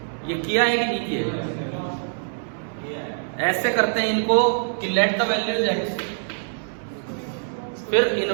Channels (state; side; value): silent; left; digital silence